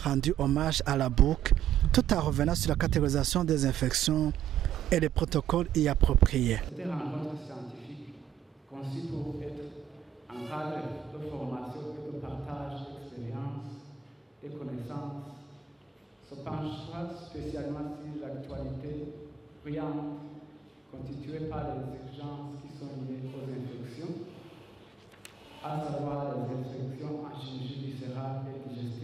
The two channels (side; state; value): left; quieter; 8.8 dB